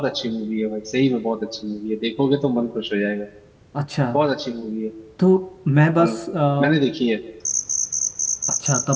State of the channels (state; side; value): identical; both; correlation 1.00